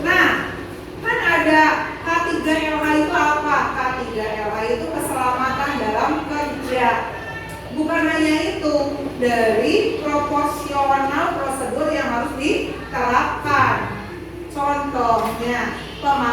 Nah, kan ada K3LH itu apa? K3LH itu keselamatan dalam kerja. Bukan hanya itu, dari proporsional prosedur yang harus diterapkan. Contohnya,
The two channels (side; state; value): both; identical; correlation 1.00